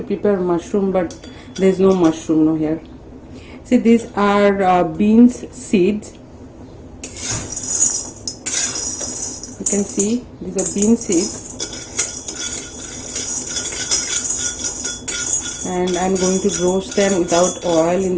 prepare mushroom, but there is no mushroom no here. See, these are beans seeds. You can see these are bean seeds, and I'm going to roast them without oil in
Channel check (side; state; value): both; identical; correlation 1.00